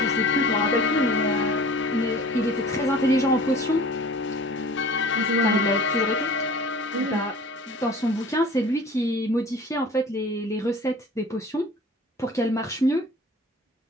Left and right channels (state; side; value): normal; both; correlation 0.44